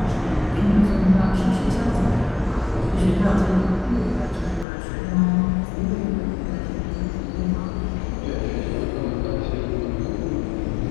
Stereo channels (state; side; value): drops out; right; at 4.7 s